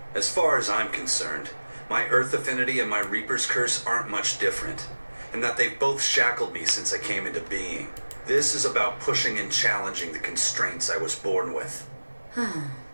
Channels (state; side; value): inverted; both; correlation -1.00